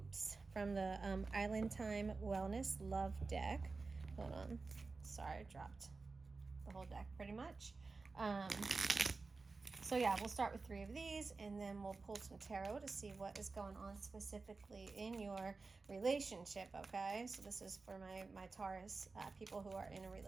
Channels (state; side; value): quieter; left; 4.0 dB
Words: from the Island Time Wellness Love deck. Hold on. Sorry, I dropped the whole deck pretty much. So yeah, we'll start with 3 of these, and then we'll pull some tarot to see what is going on specifically in your relationship, okay? So this is for my Taurus people who are in a